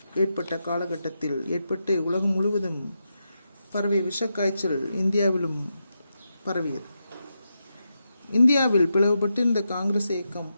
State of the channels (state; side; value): inverted; both; correlation -0.86